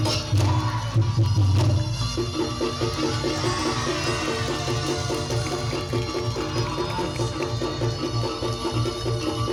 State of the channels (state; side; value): identical; both; correlation 1.00